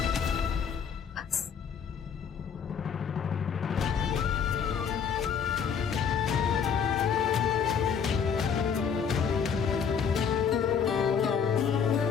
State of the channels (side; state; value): right; quieter; 7.0 dB